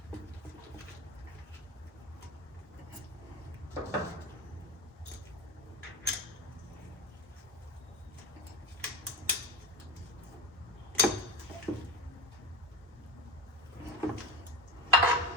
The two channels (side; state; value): both; normal; correlation 0.22